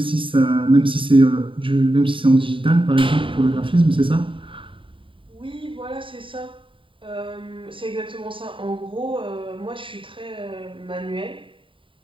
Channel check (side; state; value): left; late; 0.25 ms